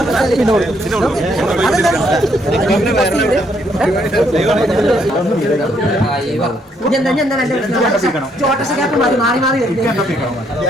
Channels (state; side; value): normal; both; correlation 0.71